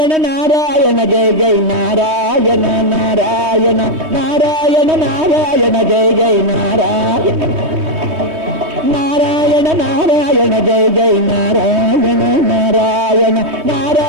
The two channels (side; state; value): left; late; 3.2 ms